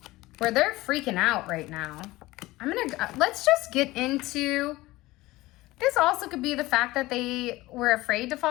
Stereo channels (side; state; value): right; quieter; 19.0 dB